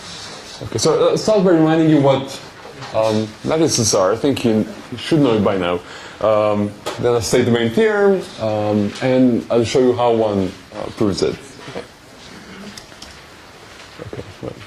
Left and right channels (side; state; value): both; identical; correlation 1.00